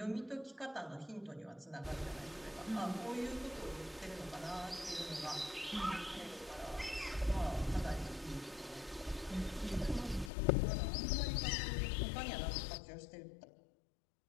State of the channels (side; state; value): right; drops out; at 10.3 s